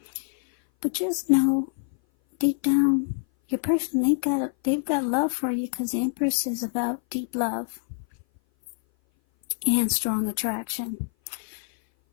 But just know, deep down, your person, they've got love for you, because the Empress is about deep love and strong attraction.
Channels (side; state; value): right; silent; 57 dB below the other